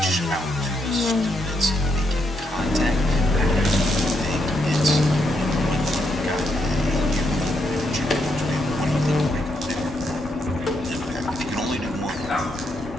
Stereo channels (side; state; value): both; normal; correlation 0.78